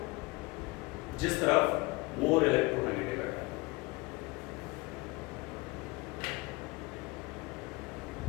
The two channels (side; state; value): right; quieter; 24.2 dB